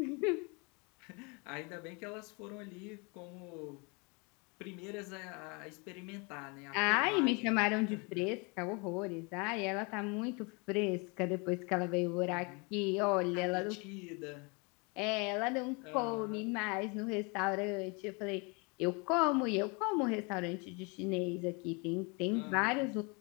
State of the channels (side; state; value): right; quieter; 30.8 dB